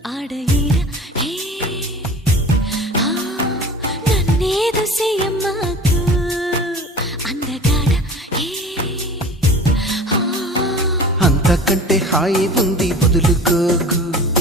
ఆడయిర హే నన్నేదో చెయ్యమాకు అందగాడ హే అంతకంటే హాయి ఉంది వదులుకోకు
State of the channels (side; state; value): both; normal; correlation 0.39